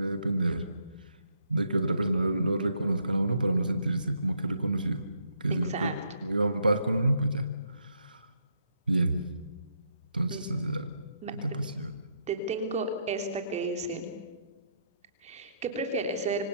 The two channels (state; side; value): inverted; both; correlation -0.73